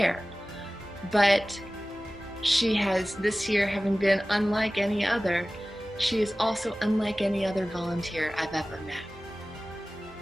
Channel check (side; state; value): both; normal; correlation 0.97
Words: But she has, this year, having been unlike any other, she is also unlike any other volunteer I've ever met.